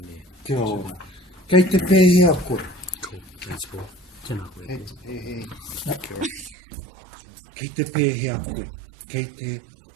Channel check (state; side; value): drops out; left; at 6.6 s